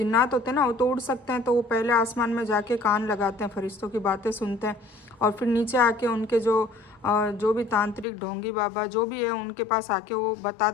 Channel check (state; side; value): drops out; right; at 8.1 s